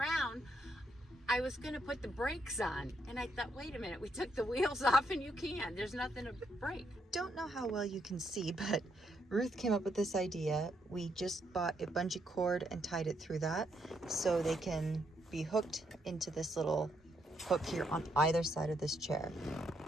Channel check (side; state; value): both; normal; correlation 0.76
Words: I was going to put the brakes on. And I thought, wait a minute, we took the wheels off and you can't. There's nothing to brake. Don't know how well you can see, but Ruth came up with this idea. We just bought a bungee cord and tied it through that so they can be hooked into this little hook here on either side of this chair.